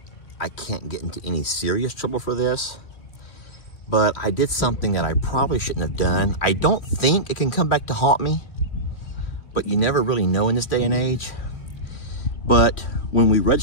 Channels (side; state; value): right; late; 3.1 ms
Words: I can't get into any serious trouble for this, but I did something that I probably shouldn't have done. I don't think it can come back to haunt me, but you never really know in this day and age. But when we